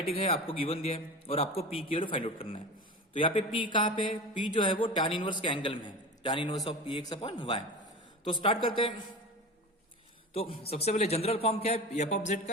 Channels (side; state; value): both; normal; correlation 0.31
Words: है, आपको गिवन दिया है और आपको p की वैल्यू फाइंड आउट करना है। तो यहाँ पे p कहाँ पे है, p जो है वो tan इनवर्स के एंगल में है, tan inverse of px upon y। तो स्टार्ट करते हैं। तो सबसे पहले जनरल फॉर्म क्या है f ऑफ z